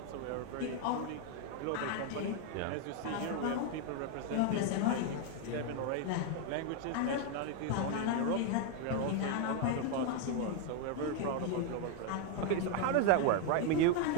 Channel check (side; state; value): both; different; correlation 0.00